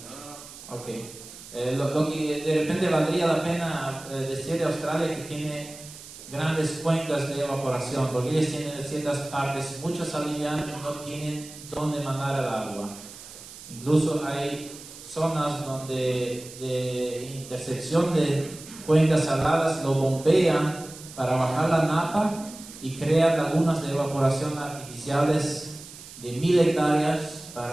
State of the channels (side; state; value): right; noise; hiss, 16 dB below the sound